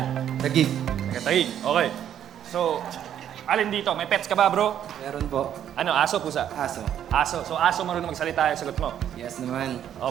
Tagig. Taga Taguig. Okay. So, alin dito? May pets ka ba, bro? Meron po. Ano, aso, pusa? Aso. Aso. So, aso marunong magsalita yung sagot mo. Yes naman. O,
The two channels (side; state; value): left; quieter; 10.1 dB